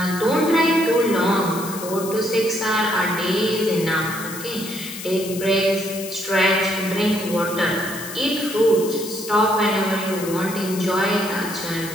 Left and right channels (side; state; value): left; noise; hiss, 11 dB below the sound